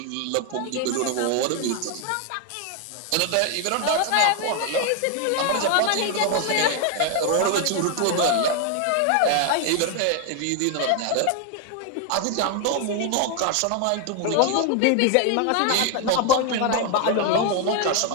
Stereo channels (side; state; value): both; different; correlation 0.01